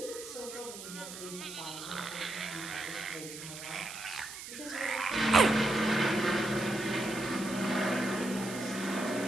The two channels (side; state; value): right; noise; hiss, 11 dB below the sound